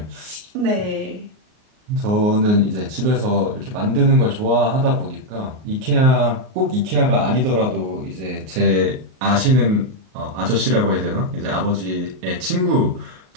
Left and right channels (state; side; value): late; left; 38 ms